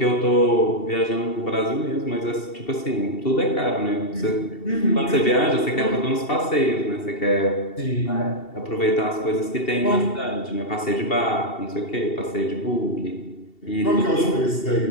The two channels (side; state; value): right; late; 2.7 ms